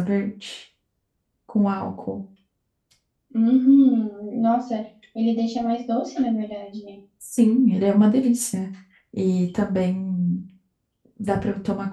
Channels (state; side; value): identical; both; correlation 1.00